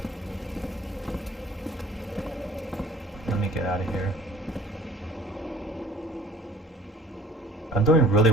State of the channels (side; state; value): both; normal; correlation 0.51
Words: Let me get out of here. I'm doing really